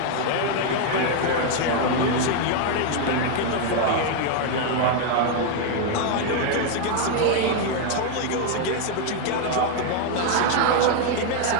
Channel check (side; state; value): both; different; correlation 0.01